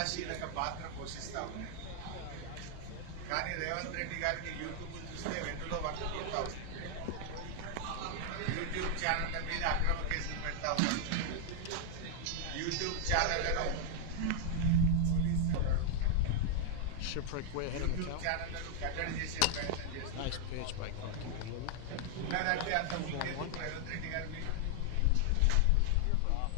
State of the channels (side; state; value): both; different; correlation 0.00